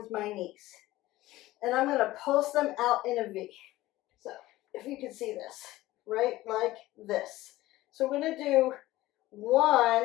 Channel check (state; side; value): quieter; right; 17.0 dB